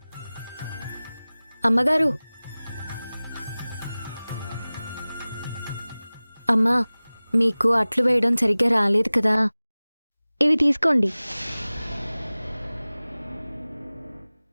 అమ్మగారు, అమ్మా, మీకు అట్లు వేయడం సరిగ్గా రాలేదు కదా, ఇవి తీసుకోండి.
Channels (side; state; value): both; inverted; correlation -0.98